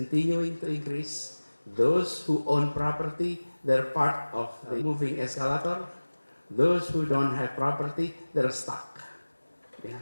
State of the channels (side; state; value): both; inverted; correlation -1.00